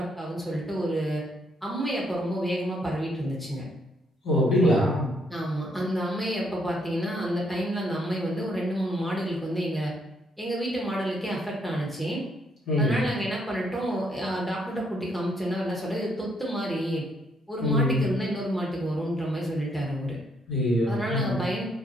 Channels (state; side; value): normal; both; correlation 0.72